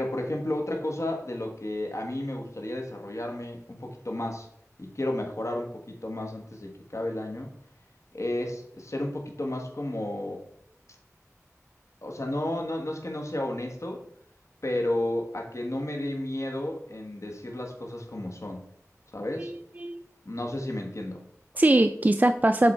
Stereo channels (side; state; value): both; normal; correlation 0.91